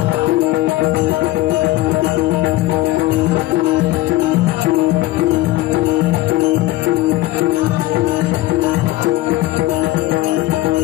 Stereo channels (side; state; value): right; quieter; 16.9 dB